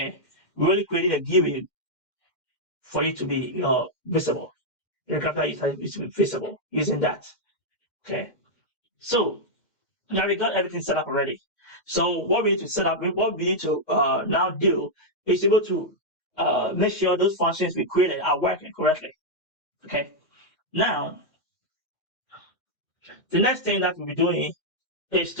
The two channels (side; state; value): right; late; 2.1 ms